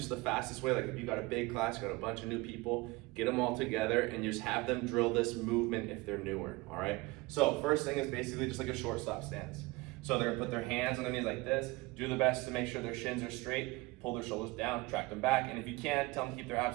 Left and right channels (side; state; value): left; quieter; 23.0 dB